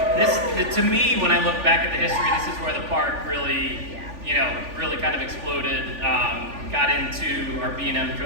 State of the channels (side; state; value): left; late; 3.4 ms